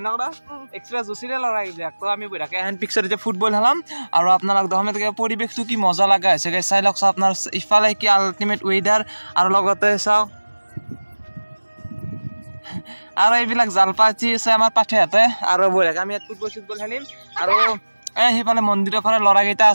এনেকুৱা এক্সট্ৰা জোচিৰে লৰাই যায়। তো আমি বঢ়িয়াকৈ এখন পিকচাৰ এতিয়া ফুটবল খেলাম আৰু আপোনালোক দহমে পৰিৱেশটো কি মজা লগা হৈছে চাই লওক। চাওক আপোনাৰ ইফালে কি আল্টিমেট ৱেডাৰ আৰু লগতে চাওক আৰু এইবিলাক জালপাতি আছে আমাৰ পাঠেহাতে। আৰু বঢ়িয়াকৈ আমি ইয়াত ফুটবল খেলিম। আৰু সেইফালে মন্দিৰৰ ফালে ল'ৰাকেইটা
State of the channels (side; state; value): both; inverted; correlation -1.00